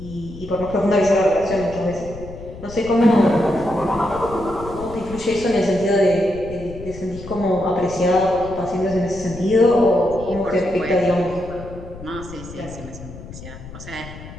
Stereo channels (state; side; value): noise; left; rumble, 14 dB below the sound